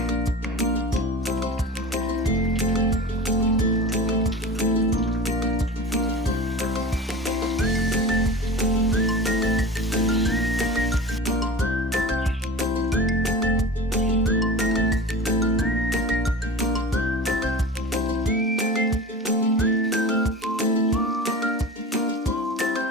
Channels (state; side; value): normal; both; correlation 0.33